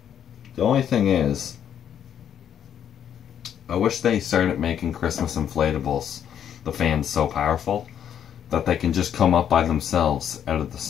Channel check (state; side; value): quieter; right; 9.1 dB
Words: only thing is, I wish they started making Christmas inflatables, the fans so powerful, that they can just come up by themselves out of the